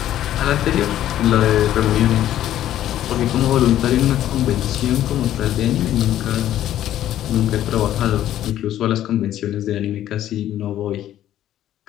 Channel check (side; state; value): right; quieter; 12.3 dB